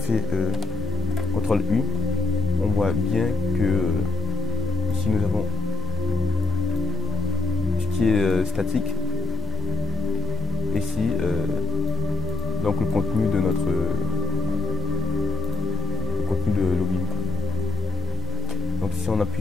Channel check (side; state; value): right; quieter; 3.3 dB